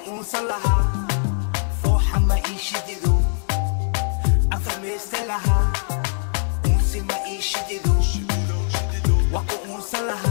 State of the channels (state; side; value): silent; right; digital silence